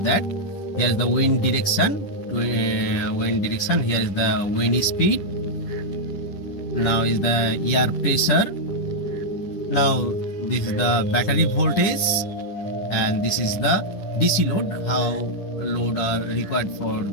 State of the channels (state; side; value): late; right; 10 ms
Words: that. Here is the wind direction. Here is the wind speed. Now is the air pressure. Now this is the battery voltage, and this is the DC load, how load are required for